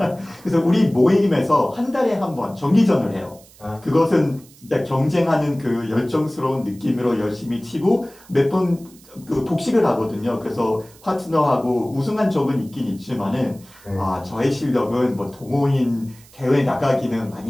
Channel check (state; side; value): noise; right; hiss, 25 dB below the sound